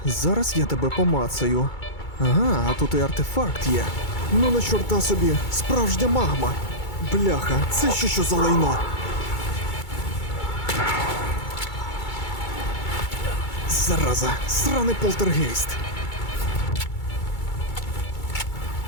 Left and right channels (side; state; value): right; late; 2.3 ms